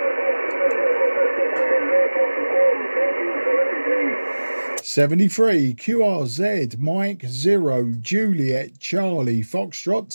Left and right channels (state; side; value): inverted; both; correlation -1.00